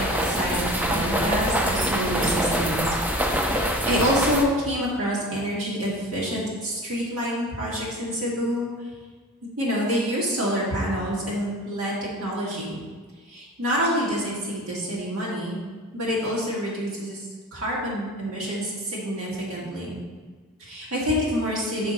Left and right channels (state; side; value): normal; both; correlation 0.37